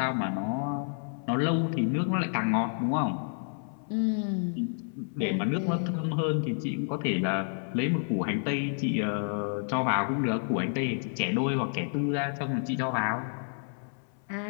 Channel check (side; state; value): right; silent; 58 dB below the other